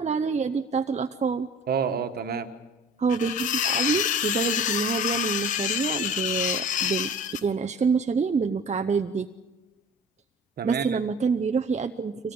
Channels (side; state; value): both; normal; correlation 0.45